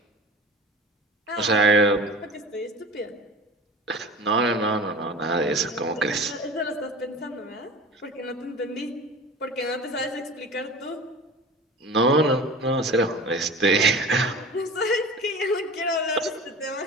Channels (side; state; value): both; normal; correlation 0.37